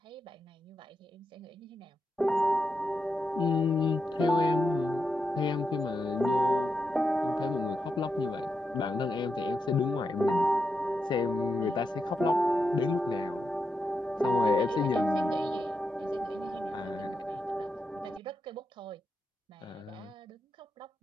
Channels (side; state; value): both; normal; correlation 0.85